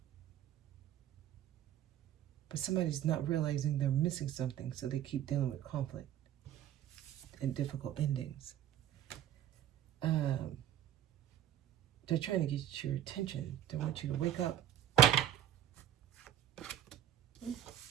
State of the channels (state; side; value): quieter; left; 11.2 dB